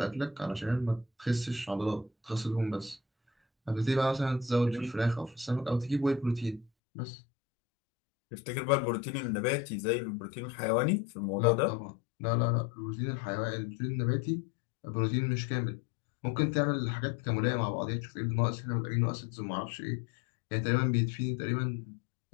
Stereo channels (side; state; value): right; drops out; at 6.7 s